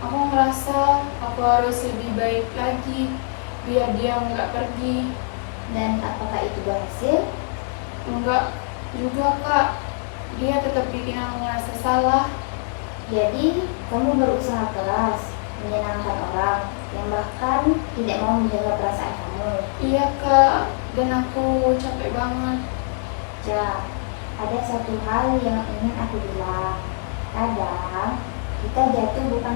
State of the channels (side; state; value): right; silent; 59 dB below the other